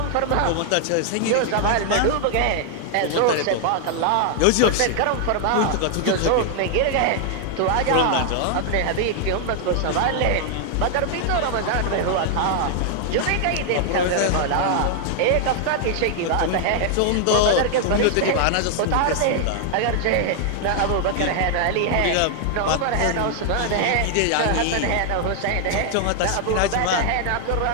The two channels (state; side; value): different; both; correlation 0.00